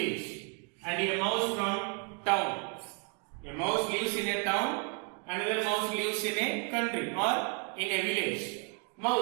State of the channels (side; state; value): left; quieter; 34.6 dB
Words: and a mouse from town. A mouse lives in a town, another mouse lives in a country or in a village.